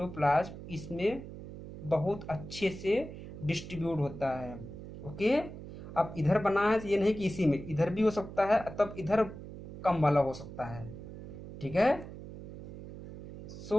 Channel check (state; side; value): noise; right; hum, 12 dB below the sound